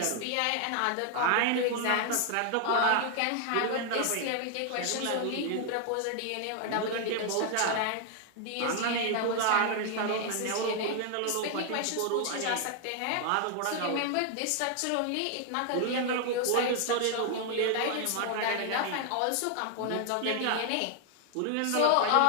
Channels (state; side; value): different; both; correlation 0.00